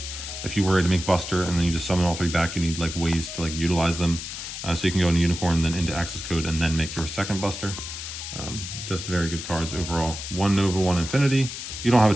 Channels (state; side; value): noise; left; hiss, 8 dB below the sound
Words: If you were to make Buster and then you just summon all 3 back, you need like ways to like utilize them. So you can go into Unicorn, then into Access Code, and then make your second Buster. Just very good cards overall. 1 Nova, 1 Infinity. You don't have a